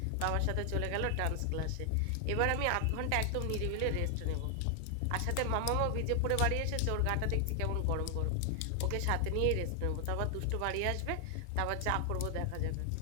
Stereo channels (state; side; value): different; both; correlation 0.00